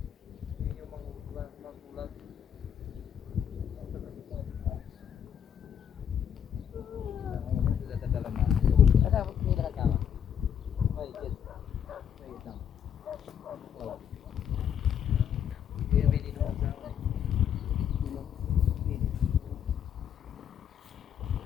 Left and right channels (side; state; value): right; quieter; 8.7 dB